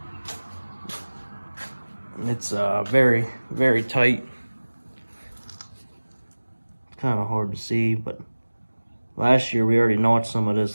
It's very, very tight. It's kind of hard to see, but last year we already notched some of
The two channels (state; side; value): inverted; both; correlation -1.00